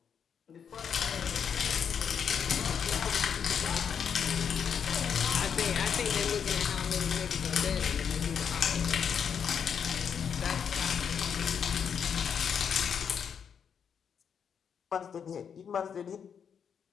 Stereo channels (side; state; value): right; quieter; 7.4 dB